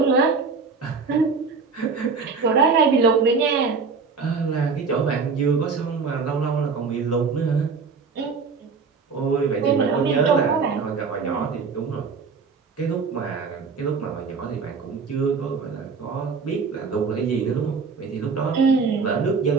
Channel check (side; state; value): left; quieter; 5.0 dB